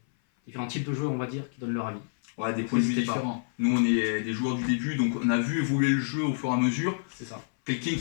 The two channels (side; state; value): right; silent; 57 dB below the other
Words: types de joueurs, on va dire, qui donnent leur avis. Ouais, des points de vue différents. Nous, on est des joueurs du début, donc on a vu évoluer le jeu au fur et à mesure. C'est ça. Quelqu'un